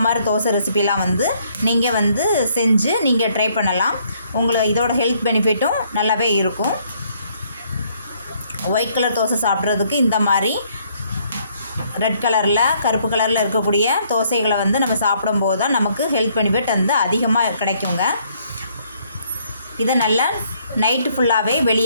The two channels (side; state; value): both; inverted; correlation -0.67